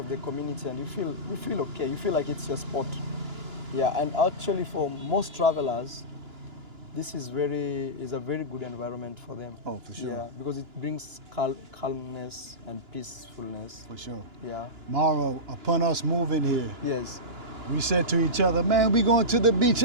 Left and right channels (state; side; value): late; left; 2.9 ms